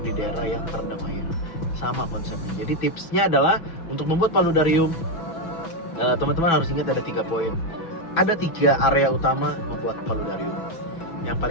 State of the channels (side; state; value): right; late; 6.1 ms